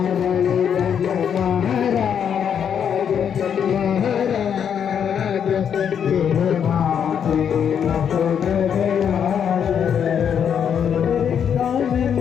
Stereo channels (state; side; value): quieter; right; 8.1 dB